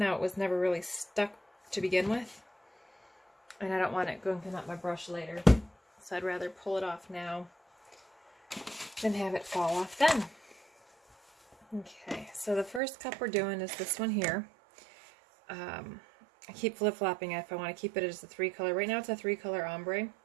it was never really stuck to begin with. And I don't want it going up my brush later. So I'd rather pull it off now than have it fall off then. Okay, so the first cup we're doing is this one here. I keep flip-flopping if I want to keep it as a 3-color. Right now it's a 3-color ombre.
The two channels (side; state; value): left; drops out; at 12.8 s